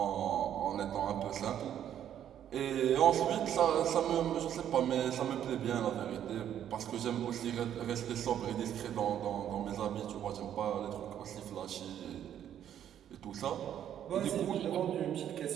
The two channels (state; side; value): quieter; left; 10.2 dB